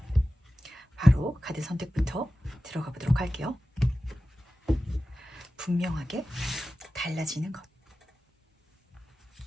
바로 카드 선택부터 들어가 보도록 할게요. 분명하게 달라지는 것.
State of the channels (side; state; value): both; normal; correlation 0.95